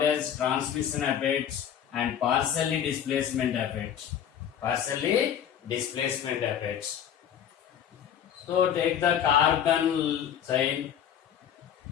as transmission effect and partially displacement effect. Partially displacement effect. So take the carbon chain.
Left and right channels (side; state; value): right; quieter; 9.3 dB